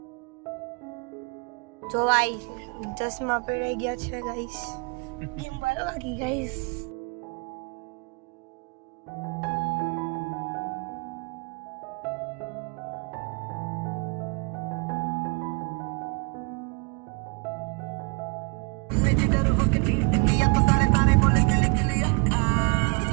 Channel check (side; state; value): left; quieter; 32.0 dB